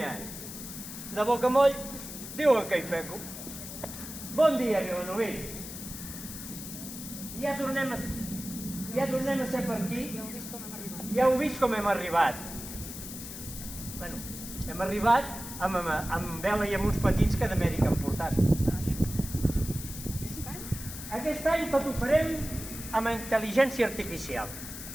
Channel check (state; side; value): noise; left; hiss, 10 dB below the sound